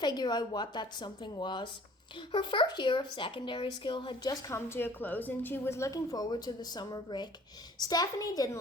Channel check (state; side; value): normal; both; correlation 0.52